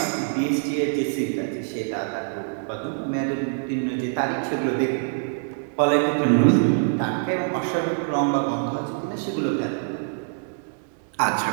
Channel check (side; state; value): left; silent; digital silence